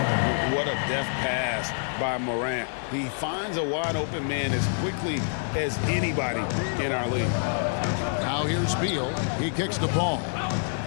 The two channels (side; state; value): right; silent; digital silence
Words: What a deft pass by Morant. He finds a wide-open man as quickly as anybody in our league. Now here's Beal. He kicks the ball.